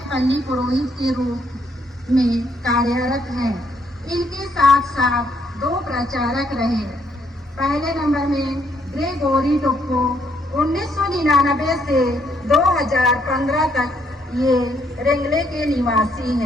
पल्ली पुरोहित के रूप में कार्यरत हैं। इनके साथ साथ 2 प्रचारक रहे। पहले नंबर में ग्रेगोरी टोप्पो 1999 से 2015 तक ये रेंगले के निवासी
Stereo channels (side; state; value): both; normal; correlation 0.71